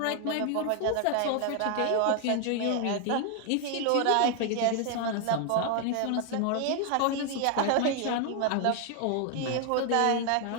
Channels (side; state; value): both; different; correlation 0.00